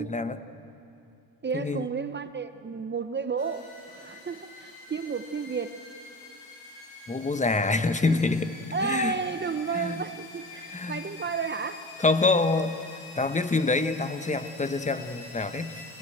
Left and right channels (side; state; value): both; normal; correlation 0.33